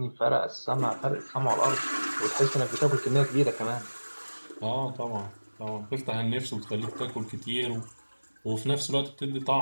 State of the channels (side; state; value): both; inverted; correlation -1.00